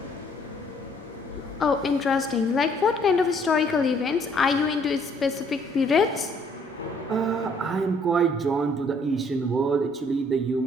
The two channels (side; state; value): both; normal; correlation 0.63